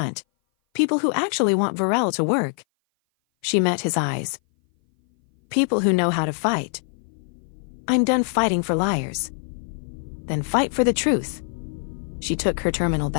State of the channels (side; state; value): right; silent; 58 dB below the other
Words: People who actually want Virelle to work." She met his eyes. "People who know how to fight." "I'm done fighting for liars." "Then fight for the truth." She took her terminal